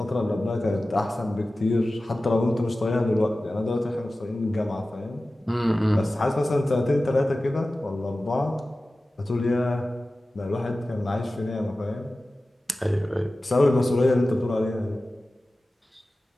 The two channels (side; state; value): both; normal; correlation 0.96